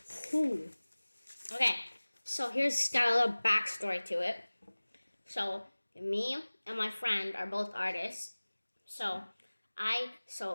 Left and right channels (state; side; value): inverted; both; correlation -1.00